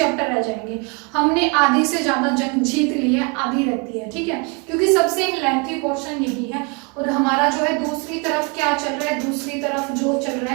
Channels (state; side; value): quieter; left; 32.7 dB